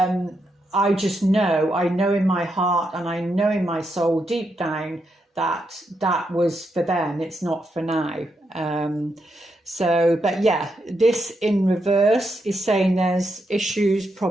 I know in my heart and I know in my soul deep down that was for them. It's not for now. But yeah, this in reverse is saying there's issues,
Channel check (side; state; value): both; normal; correlation 0.82